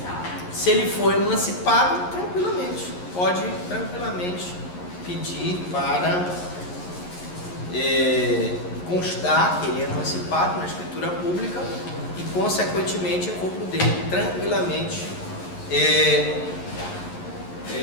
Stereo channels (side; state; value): right; late; 11 ms